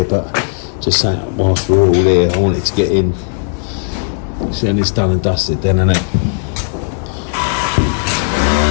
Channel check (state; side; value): silent; right; 65 dB below the other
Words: But just saying, whilst we're all here, I want it to get in. See, and it's done and dusted then, isn't it?